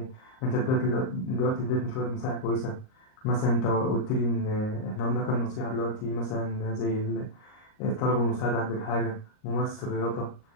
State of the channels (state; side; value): late; right; 38 ms